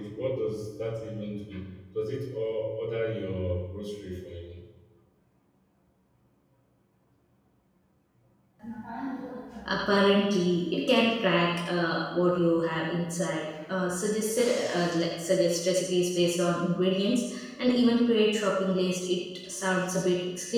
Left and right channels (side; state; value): both; identical; correlation 1.00